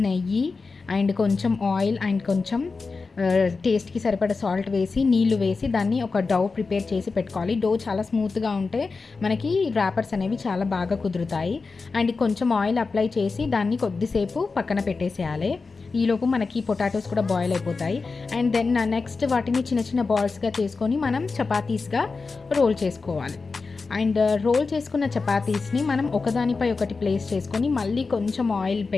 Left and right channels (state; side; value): quieter; right; 4.3 dB